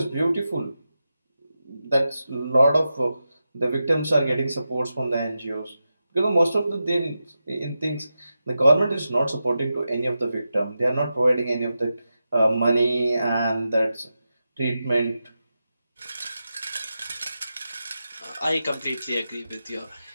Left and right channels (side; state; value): both; inverted; correlation -0.90